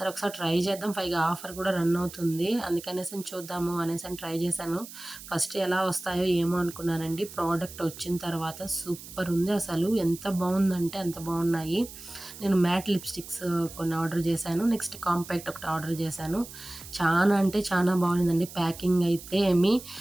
ఒకసారి ట్రై చేద్దాం, పైగా ఆఫర్ కూడా రన్ అవుతుంది, అందుకనేసి చూద్దాము అనేసి ట్రై చేశాను. ఫస్ట్ ఎలా వస్తాయో ఏమో అనుకున్నానండి, ప్రోడక్ట్ వచ్చిన తర్వాత సూపర్ ఉంది అసలు, ఎంత బాగుందంటే అంత బాగున్నాయి. నేను మ్యాట్ లిప్స్టిక్స్ కొన్ని ఆర్డర్ చేశాను, నెక్స్ట్ కాంపాక్ట్ ఒకటి ఆర్డర్ చేశాను. చాలా అంటే చాలా బాగుందండి. ప్యాకింగ్ అయితే ఏమి,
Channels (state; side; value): noise; right; hiss, 15 dB below the sound